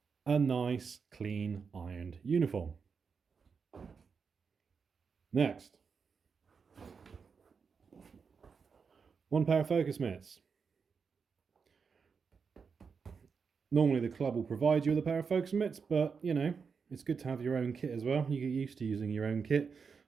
A nice, clean, ironed uniform. Next, one pair of focus mitts. Normally the club will provide you with a pair of focus mitts, but you know, it's good to have your own kit as well. You get used to using your own kit,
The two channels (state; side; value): quieter; left; 5.7 dB